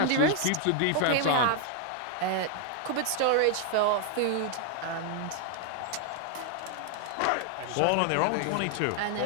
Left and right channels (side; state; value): both; different; correlation 0.00